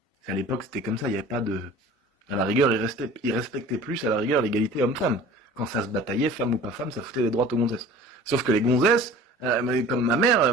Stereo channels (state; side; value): normal; both; correlation 0.44